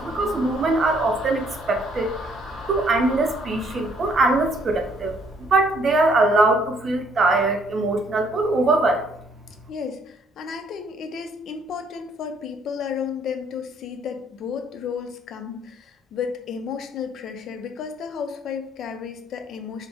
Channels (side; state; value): both; normal; correlation 0.65